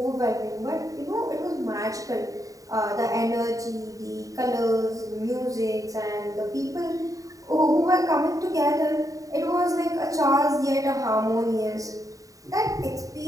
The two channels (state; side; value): late; left; 0.16 ms